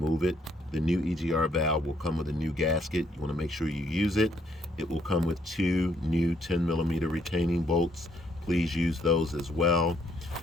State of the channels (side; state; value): both; normal; correlation 0.69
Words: it. The new EGR valve will come with a new gasket. You want to make sure you use it. It will come with 2 new 10mm retaining bolts. Please use those as well.